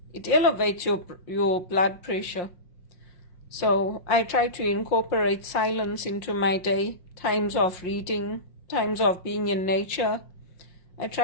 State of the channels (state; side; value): late; right; 5.6 ms